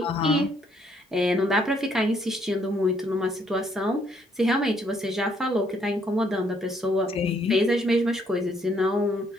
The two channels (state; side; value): normal; both; correlation 0.69